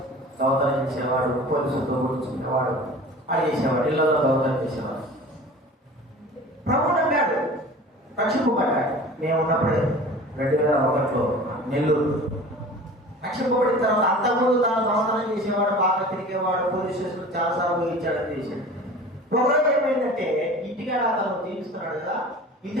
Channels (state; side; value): normal; both; correlation 0.40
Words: దొంగతనం చేసేవాడు, పోలీసులతో కూర్చునేవాడు, అది చేసేవాడు, ఇళ్ళలో దొంగతనం చేసేవాడు. ప్రభువు నమ్మాడు, రక్షింపబడ్డాడు. మేము ఉన్నప్పుడే 2001లో నెల్లూరు రక్షింపబడిన తర్వాత అంతకుముందు తాను దొంగతనం చేసేవాడు, బాగా తిరిగేవాడు, పోలీస్ స్టేషన్ చాలాసార్లు ఊహించాడని చేశాడు. ఒకరోజు ఏమైందంటే ఇంటికాడ అతను జీవిస్తున్నాడు కదా, ఇంటి